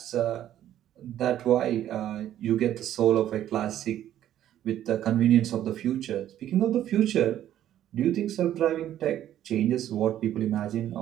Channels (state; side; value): quieter; left; 11.8 dB